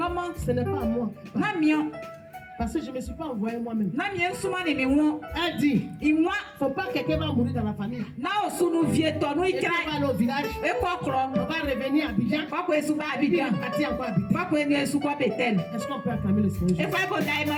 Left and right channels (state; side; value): identical; both; correlation 1.00